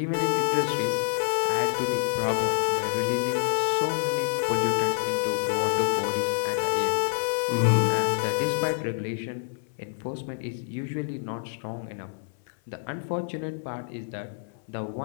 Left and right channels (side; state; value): right; silent; 60 dB below the other